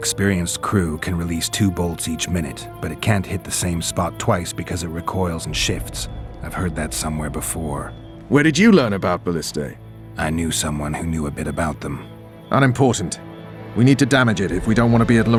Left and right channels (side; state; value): both; identical; correlation 1.00